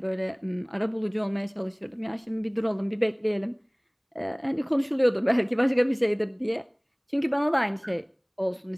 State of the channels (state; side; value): identical; both; correlation 1.00